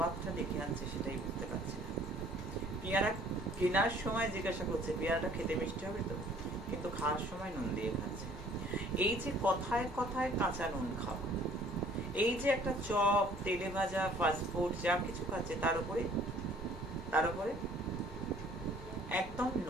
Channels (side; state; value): both; normal; correlation 0.56